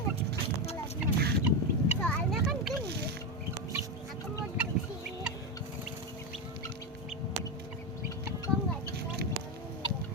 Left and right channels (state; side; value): normal; both; correlation 0.12